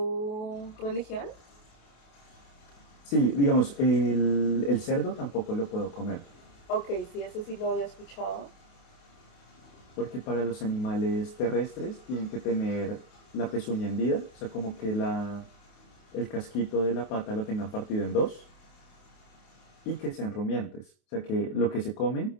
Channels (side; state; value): right; late; 28 ms